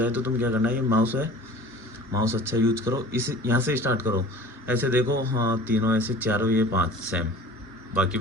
तो तुम क्या करना है, ये माउस है, माउस अच्छा यूज करो, इस यहाँ से स्टार्ट करो, ऐसे देखो, हाँ तीनों ऐसे, चारों ये 5 सेम,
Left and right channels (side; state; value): both; normal; correlation 0.43